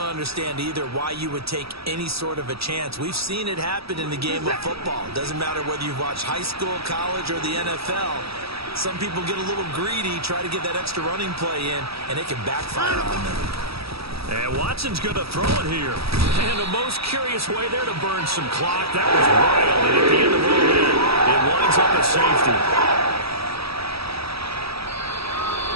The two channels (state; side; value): late; left; 0.77 ms